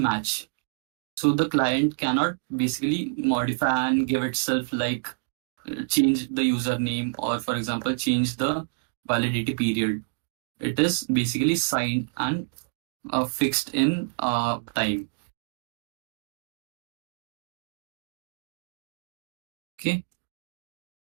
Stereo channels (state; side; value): silent; left; digital silence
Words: So the client cannot basically modify and give itself like change the username or, for example, change the validity period. It is basically signed and fixed in time. Okay.